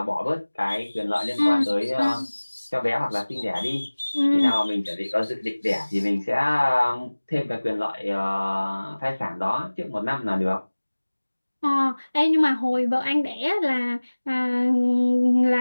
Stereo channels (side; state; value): both; inverted; correlation -1.00